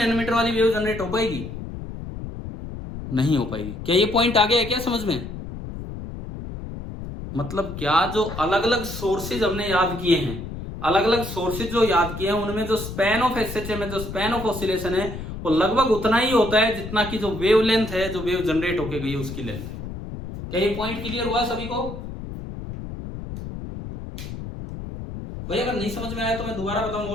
वाली वेव जनरेट हो पाएगी? नहीं हो पाएगी। क्या ये पॉइंट आ गया है क्या समझ में? मतलब क्या, जो अलग अलग सोर्सेज हमने याद किए हैं, अलग अलग सोर्सेज जो याद किए हैं, उनमें जो स्पैन ऑफ एसएचएम है, जो स्पैन ऑफ ऑसिलेशन है, वो लगभग उतना ही होता है जितना कि जो वेव लेंथ है, जो वेव जनरेट होके गई है उसकी लेंथ है। क्या ये पॉइंट क्लियर हुआ सभी को? भाई अगर नहीं समझ में आया तो मैं दोबारा बताऊं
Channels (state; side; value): noise; left; rumble, 9 dB below the sound